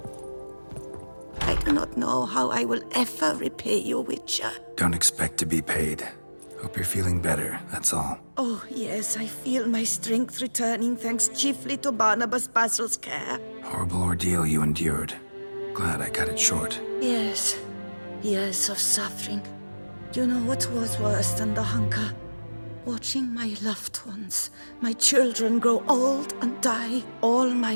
I do not know how I will ever repay you, Witcher. Don't expect to be paid. Hope you're feeling better, that's all. Oh, yes, I feel my strength returning thanks chiefly to Barnabas Basil's care. Horrible ordeal you endured. Glad I cut it short. Yes, years of suffering. Do you know what was worse than the hunger? Watching my loved ones, my children grow old and die. All my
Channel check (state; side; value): inverted; both; correlation -1.00